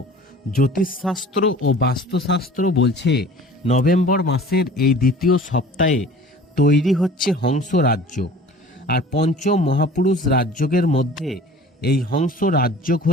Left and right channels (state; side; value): normal; both; correlation 0.45